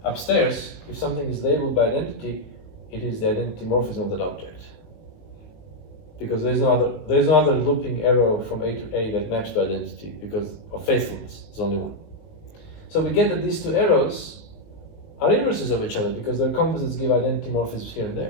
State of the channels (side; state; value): right; late; 19 ms